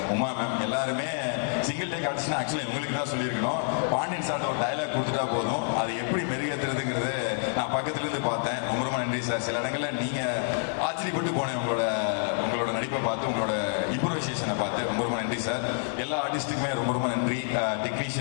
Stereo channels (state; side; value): silent; right; 59 dB below the other